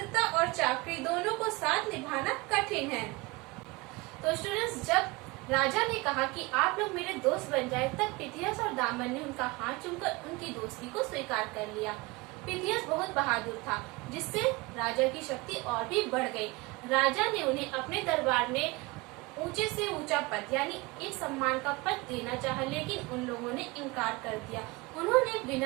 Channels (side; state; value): left; quieter; 24.5 dB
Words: और चाकरी दोनों को साथ निभाना कठिन है। तो स्टूडेंट्स, जब राजा ने कहा कि आप लोग मेरे दोस्त बन जाए, तब पिथियस और दामन ने उनका हाथ चूमकर उनकी दोस्ती को स्वीकार कर लिया। पिथियस बहुत बहादुर था, जिससे राजा की शक्ति और भी बढ़ गई। राजा ने उन्हें अपने दरबार में ऊंचे से ऊंचा पद यानी एक सम्मान का पद देना चाहा, लेकिन उन लोगों ने इनकार कर दिया। उन्होंने